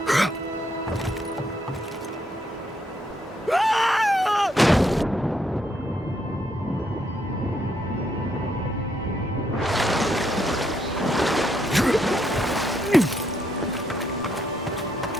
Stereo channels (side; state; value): both; normal; correlation 0.75